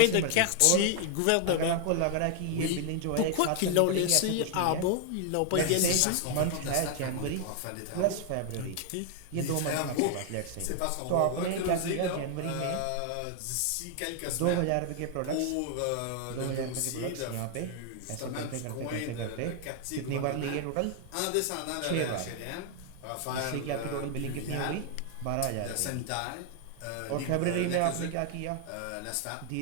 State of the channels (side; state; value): both; different; correlation 0.00